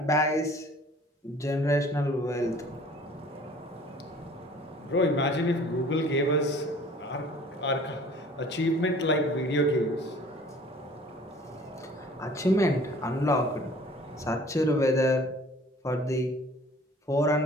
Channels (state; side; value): normal; both; correlation 0.50